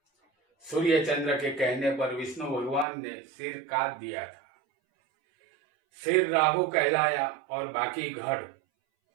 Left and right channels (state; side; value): drops out; left; at 2.9 s